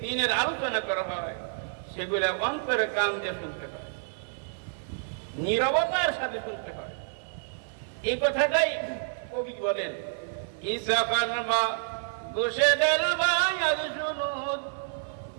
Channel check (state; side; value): silent; left; 59 dB below the other